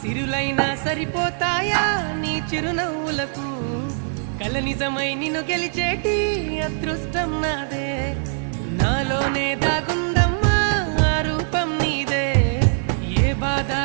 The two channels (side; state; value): left; silent; 56 dB below the other